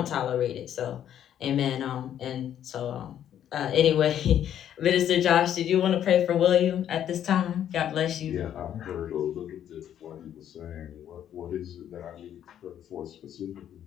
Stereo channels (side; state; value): right; quieter; 10.3 dB